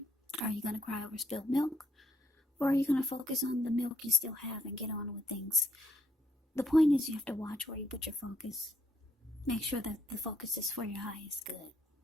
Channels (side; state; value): both; normal; correlation 0.71